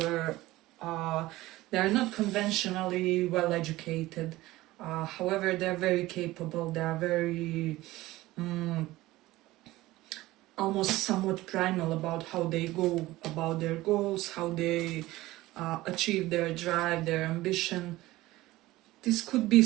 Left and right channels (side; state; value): left; quieter; 17.9 dB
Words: they're not conventionally well educated. However, they're very capable, they're very almost somewhat primal about how they go about their goals, how they achieve their drive, their ambition. This could be